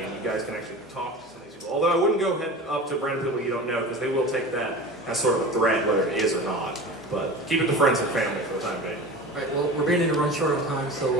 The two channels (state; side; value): normal; both; correlation 0.34